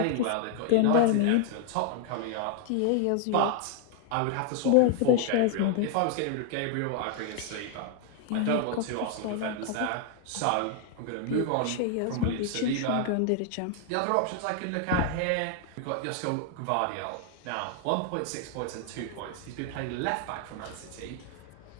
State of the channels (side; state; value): both; different; correlation 0.00